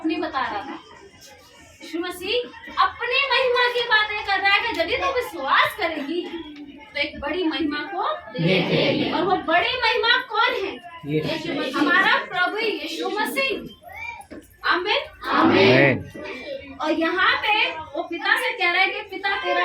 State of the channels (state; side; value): identical; both; correlation 1.00